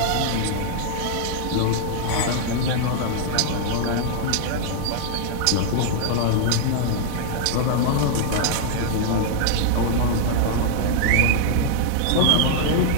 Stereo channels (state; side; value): different; both; correlation -0.01